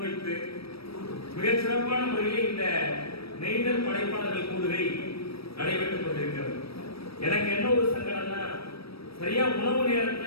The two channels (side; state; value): right; late; 0.77 ms